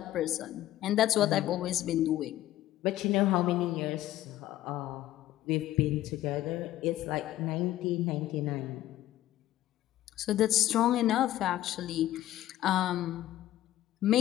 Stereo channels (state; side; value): quieter; right; 14.1 dB